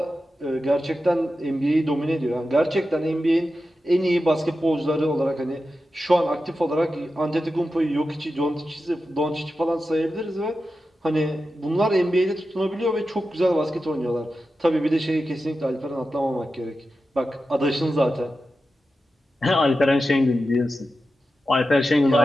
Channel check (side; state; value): both; normal; correlation 0.91